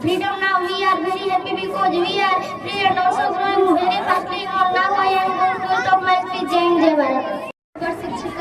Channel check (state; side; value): identical; both; correlation 1.00